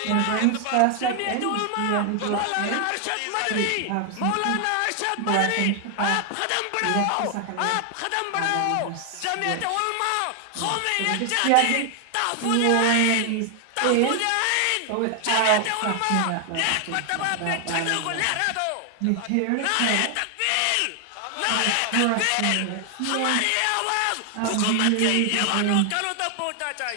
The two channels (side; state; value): both; different; correlation 0.00